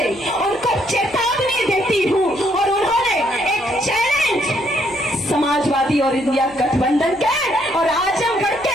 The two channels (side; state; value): left; noise; hum, 26 dB below the sound